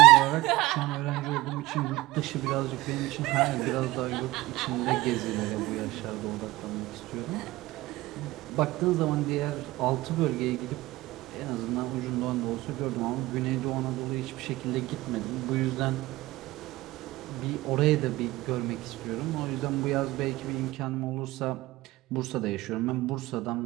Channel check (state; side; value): quieter; left; 18.8 dB